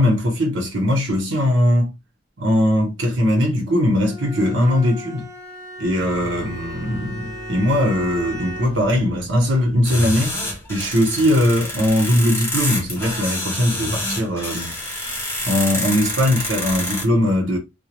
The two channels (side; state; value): both; normal; correlation 0.71